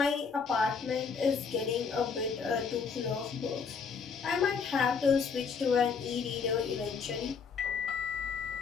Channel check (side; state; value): right; quieter; 5.7 dB